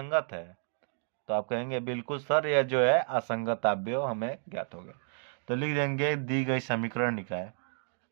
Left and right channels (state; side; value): silent; left; digital silence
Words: है, तो आप कहेंगे बिल्कुल सर, यह जो है असंगत अवयव हमें ज्ञात हो गया। तो लिख देंगे दी गई समीकरण निकाय,